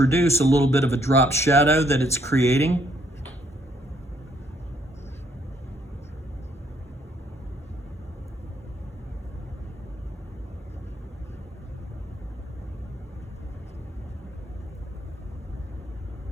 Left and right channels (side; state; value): both; normal; correlation 0.69